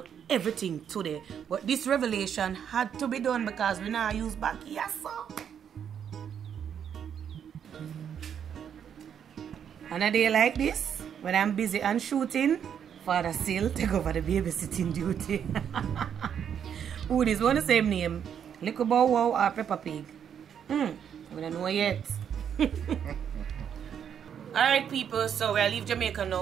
everything today. But this revelation had to be done because we now use back here, so. On a day like this, when I'm busy and shooting, Father still take over the babysitting duty. Who is one the same name? Little Bow Wow or Peppa Pig? We don't know yet. Alright, people, so we'll leave Jamaica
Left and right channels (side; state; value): left; quieter; 8.4 dB